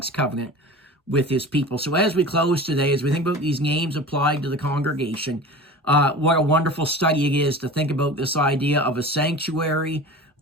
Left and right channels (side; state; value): both; normal; correlation 0.36